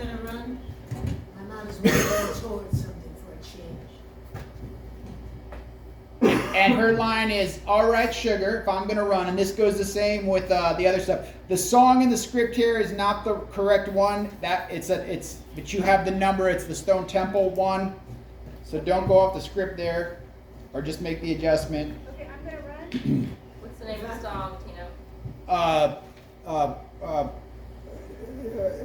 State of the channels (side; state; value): both; identical; correlation 1.00